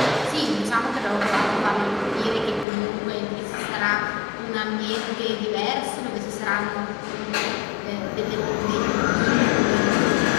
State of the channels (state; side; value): drops out; right; at 2.7 s